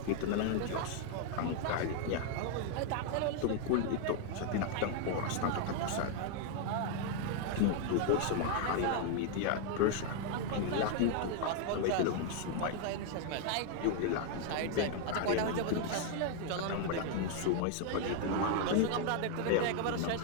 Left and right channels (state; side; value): different; both; correlation 0.00